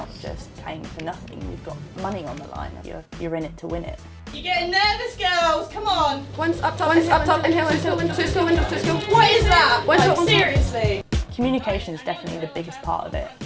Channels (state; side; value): identical; both; correlation 1.00